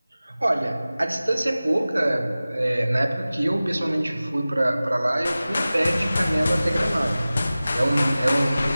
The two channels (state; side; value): inverted; both; correlation -0.97